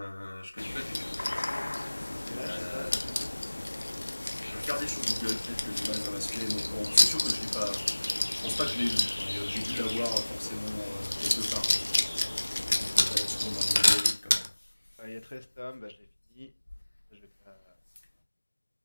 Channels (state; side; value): inverted; both; correlation -1.00